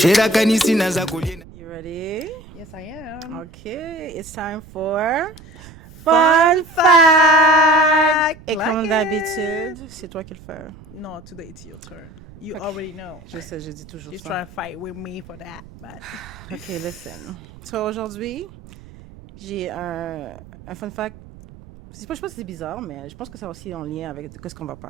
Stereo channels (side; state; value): right; noise; rumble, 19 dB below the sound